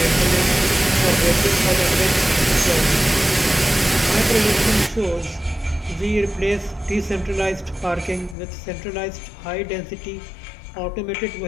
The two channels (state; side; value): drops out; right; at 8.3 s